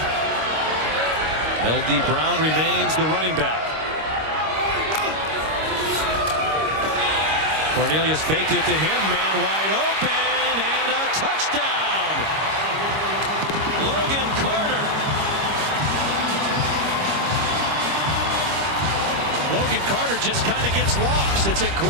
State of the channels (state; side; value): late; left; 26 ms